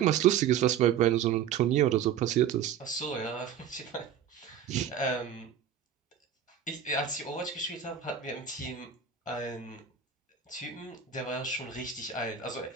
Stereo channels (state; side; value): quieter; left; 8.5 dB